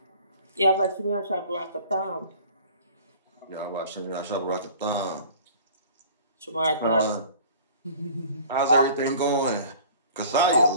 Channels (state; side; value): inverted; both; correlation -0.47